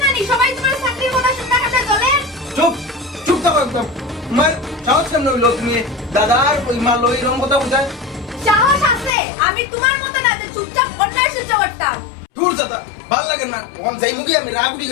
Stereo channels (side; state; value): right; drops out; at 9.2 s